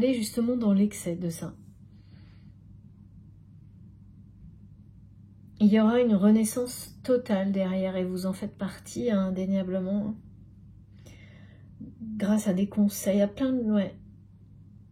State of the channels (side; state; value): both; identical; correlation 1.00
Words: justement dans l'excès de ça. Il y aura une renaissance totale derrière, et vous en faites partie, hein, indéniablement. Grâce à des conseils, à plein de... ouais.